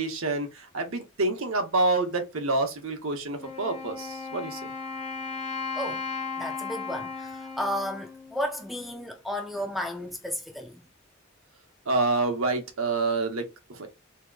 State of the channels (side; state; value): both; normal; correlation -0.16